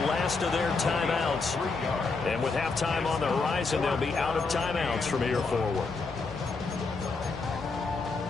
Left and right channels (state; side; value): quieter; right; 4.1 dB